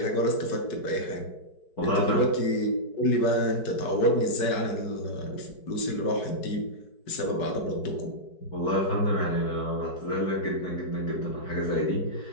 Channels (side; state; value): right; late; 4.6 ms